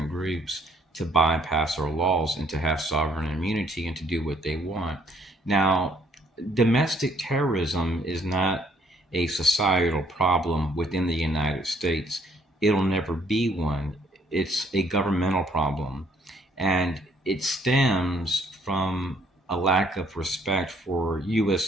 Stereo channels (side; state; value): both; normal; correlation 0.64